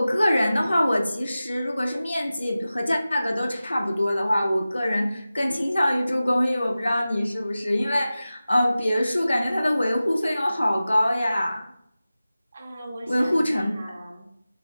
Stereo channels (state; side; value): inverted; both; correlation -0.95